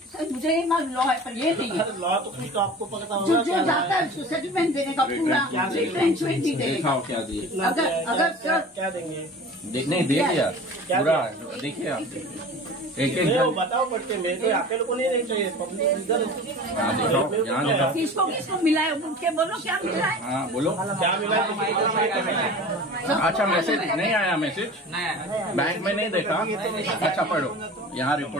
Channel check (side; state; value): both; normal; correlation 0.38